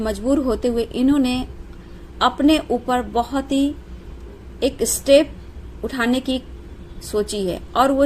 होते हुए इन्होंने अपने ऊपर बहुत ही एक स्टेप उठाने की सोची है, और वो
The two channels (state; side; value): identical; both; correlation 1.00